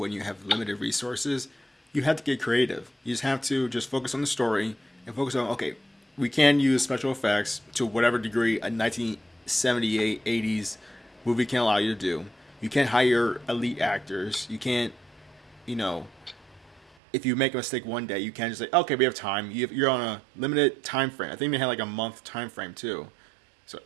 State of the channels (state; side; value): drops out; left; at 16.9 s